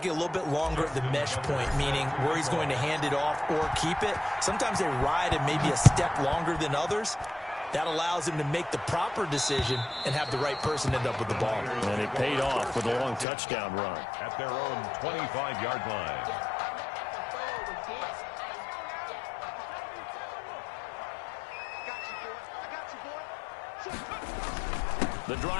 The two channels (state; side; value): drops out; right; at 13.2 s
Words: a little bit longer at the mesh point, meaning where he's going to hand it off or keep it. Sometimes they ride it maybe a step longer than others. That allows him to make the proper decision and have the right person end up with the ball. And it paid off with a long touchdown run. At their own 25-yard line. The